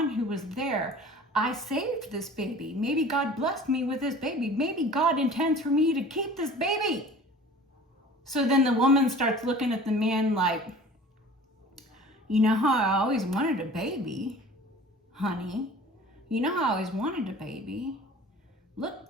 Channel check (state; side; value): normal; both; correlation 0.44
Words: who was there. I saved this baby. Maybe God blessed me with this baby. Maybe God intends for me to keep this baby. So then the woman starts looking at the man like, you know how I always wanted a baby, honey. You know how I always wanted a baby. Look,